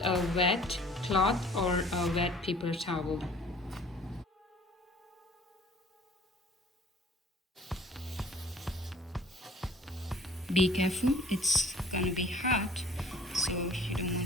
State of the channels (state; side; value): normal; both; correlation 0.52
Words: a wet cloth or a wet paper towel. Be careful, it's gonna be hot, so you don't